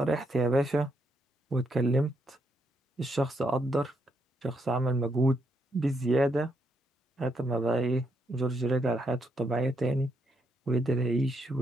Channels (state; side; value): normal; both; correlation 0.77